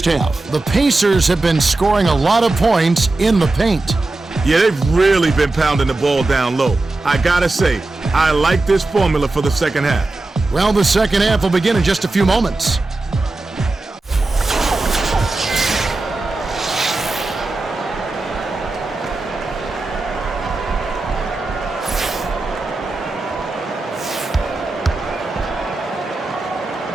half. The Pacers have been scoring a lot of points in the paint. Yeah, they've really been pounding the ball down low. I gotta say, I like this formula for the second half. Well, the second half will begin in just a few moments.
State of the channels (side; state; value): left; quieter; 3.1 dB